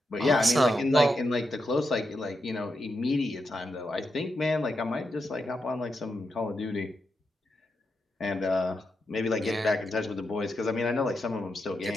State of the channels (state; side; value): normal; both; correlation 0.85